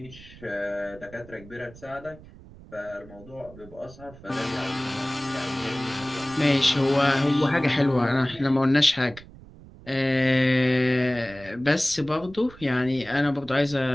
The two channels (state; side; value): noise; right; rumble, 20 dB below the sound